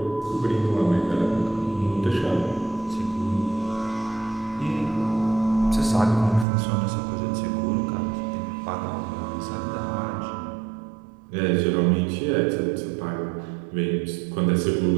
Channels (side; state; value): left; drops out; at 6.5 s